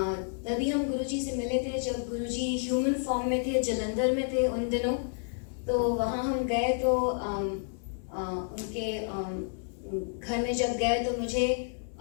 तभी हम गुरुजी से मिले थे जब गुरुजी ह्यूमन फॉर्म में थे, जलंधर में थे उन दिनों। तो वहाँ हम गए तो उनके घर में जब गए तो मुझे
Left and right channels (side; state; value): right; silent; digital silence